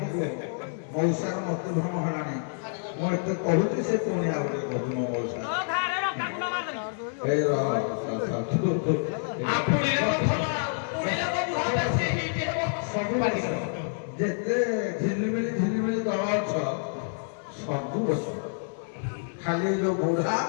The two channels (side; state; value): right; silent; digital silence